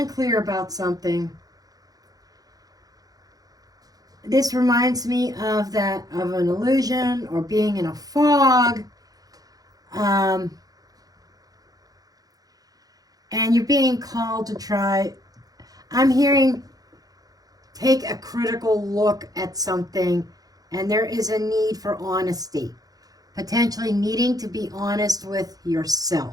about something. This reminds me of an illusion or being in a fog. And you're being called to try. I'm hearing take a critical look at something, and there is a need for honesty. Potentially needing to be honest with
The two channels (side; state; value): left; late; 0.18 ms